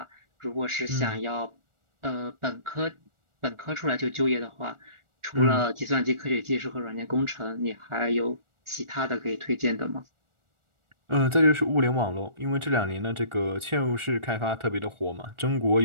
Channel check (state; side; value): late; left; 1.4 ms